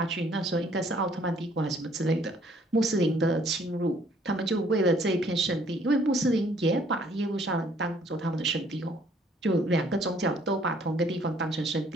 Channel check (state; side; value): normal; both; correlation 0.61